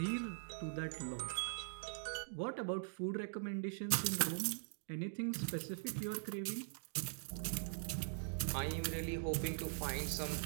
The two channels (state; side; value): silent; left; digital silence